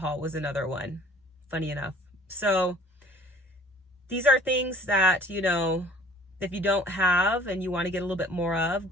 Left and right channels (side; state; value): both; normal; correlation 0.50